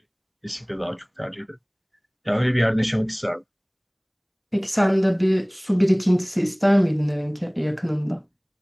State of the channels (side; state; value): both; identical; correlation 1.00